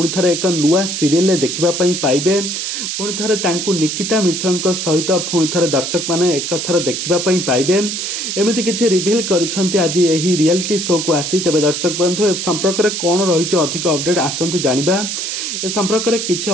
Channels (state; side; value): noise; right; hiss, 3 dB below the sound